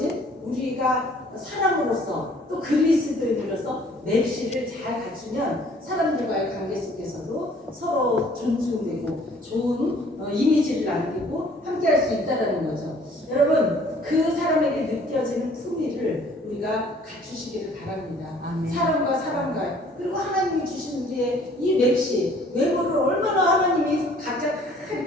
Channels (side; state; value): both; normal; correlation 0.56